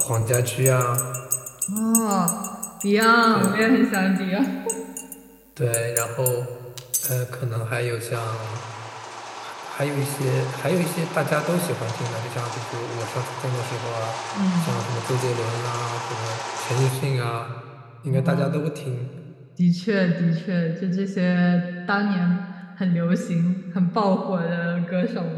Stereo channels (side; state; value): both; identical; correlation 1.00